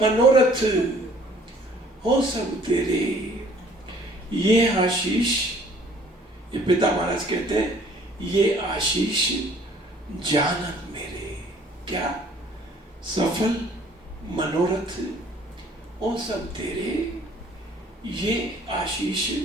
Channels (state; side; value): normal; both; correlation 0.57